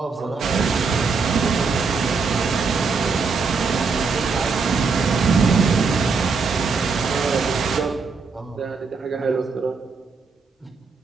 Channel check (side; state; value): left; quieter; 4.8 dB